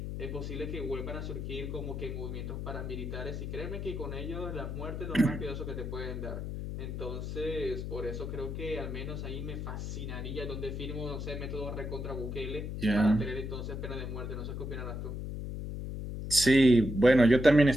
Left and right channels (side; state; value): left; noise; hum, 5 dB below the sound